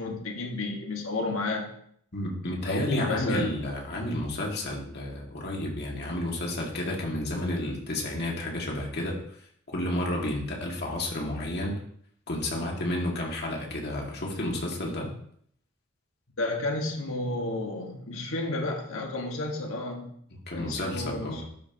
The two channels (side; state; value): both; normal; correlation 0.39